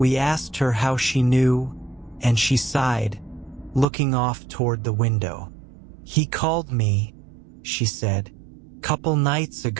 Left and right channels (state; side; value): drops out; left; at 3.9 s